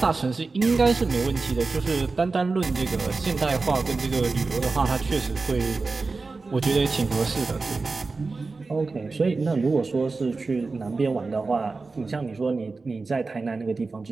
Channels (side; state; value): left; quieter; 3.9 dB